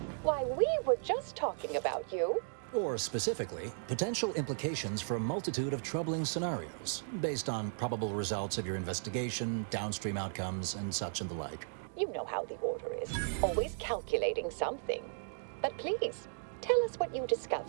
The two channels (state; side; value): silent; left; digital silence